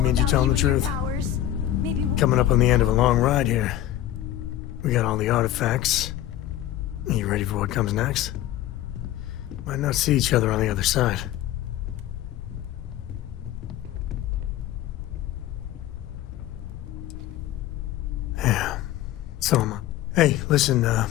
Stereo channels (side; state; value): right; quieter; 13.1 dB